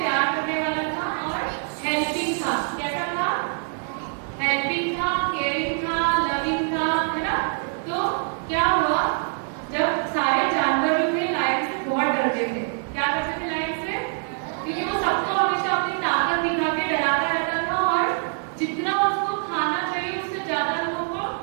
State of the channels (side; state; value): left; silent; 58 dB below the other